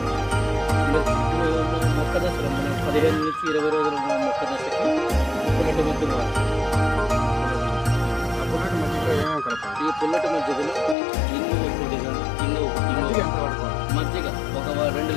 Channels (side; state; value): right; drops out; at 11.0 s